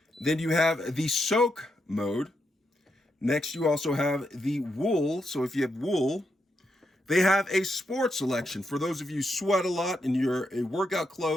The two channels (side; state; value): both; normal; correlation 0.81